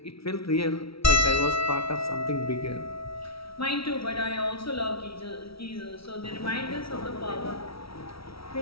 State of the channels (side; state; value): right; late; 0.76 ms